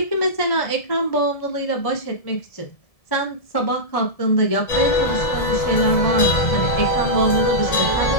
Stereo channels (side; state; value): right; late; 1.7 ms